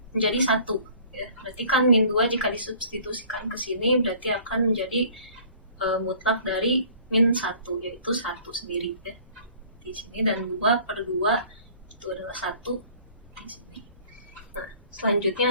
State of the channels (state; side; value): inverted; both; correlation -0.51